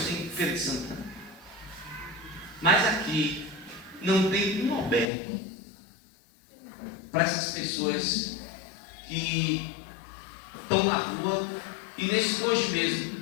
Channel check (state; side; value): drops out; right; at 5.1 s